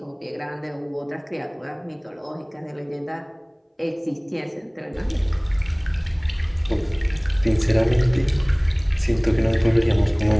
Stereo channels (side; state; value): both; identical; correlation 1.00